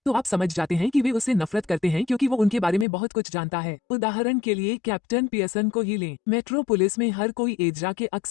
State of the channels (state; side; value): drops out; right; at 2.9 s